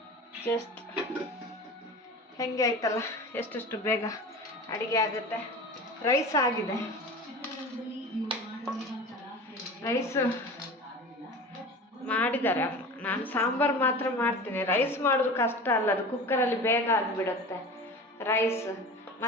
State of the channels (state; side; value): normal; both; correlation 0.34